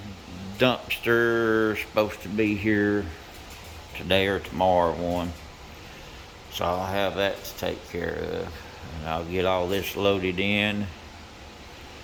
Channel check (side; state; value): both; identical; correlation 1.00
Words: dumpster supposed to be here today or tomorrow one. So I'll have that to take care of. And I'll get all this loaded in.